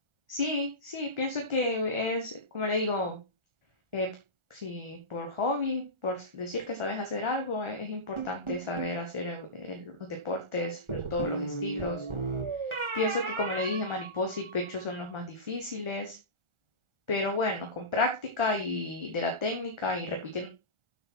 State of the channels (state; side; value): late; left; 1.4 ms